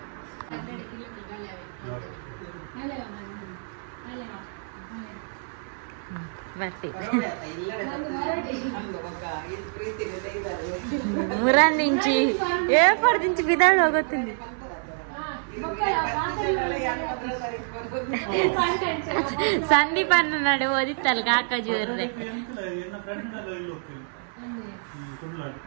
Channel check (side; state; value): left; silent; 58 dB below the other